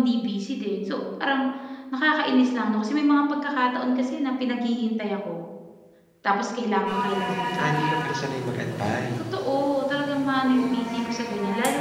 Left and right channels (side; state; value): both; identical; correlation 1.00